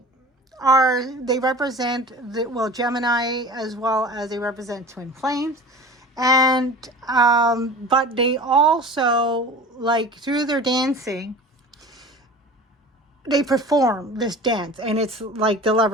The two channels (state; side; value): normal; both; correlation 0.38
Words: they represent Gemini, as well as they represent twin flames. And but they also, like, through their dancing, they perform this dance, and it's like the